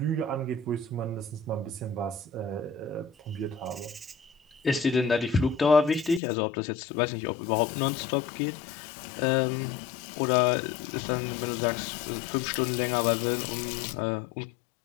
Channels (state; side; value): drops out; right; at 6.2 s